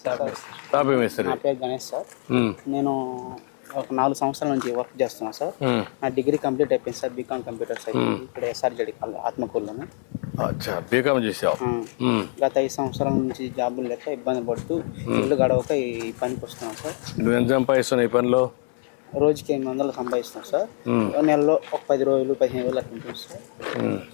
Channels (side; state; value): right; silent; 59 dB below the other